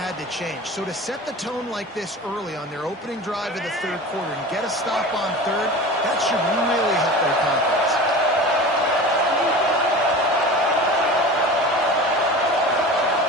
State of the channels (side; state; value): both; normal; correlation 0.34